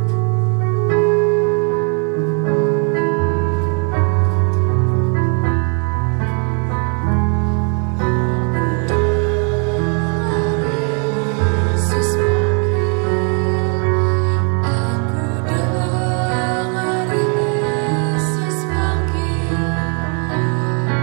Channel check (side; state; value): left; quieter; 39.1 dB